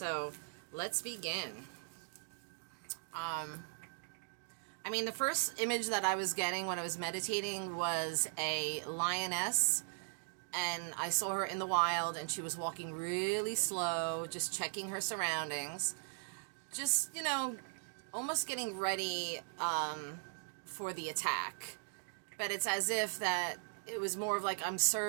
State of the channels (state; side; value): silent; left; digital silence